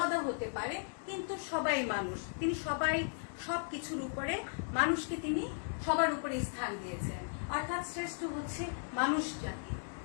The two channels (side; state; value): right; silent; digital silence